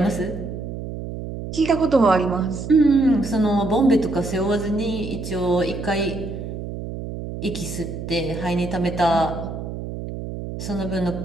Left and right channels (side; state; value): right; noise; hum, 8 dB below the sound